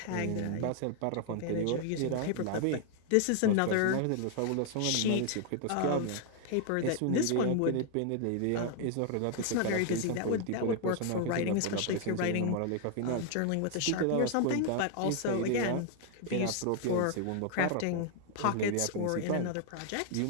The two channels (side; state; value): both; different; correlation 0.00